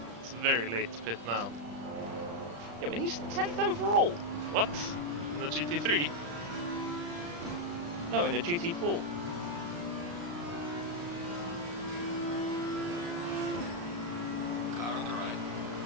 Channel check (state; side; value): late; left; 35 ms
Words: it's very late to pit now. Yeah, but he's 10th overall. What? In the GT3? No, in a GT4. Car on the right.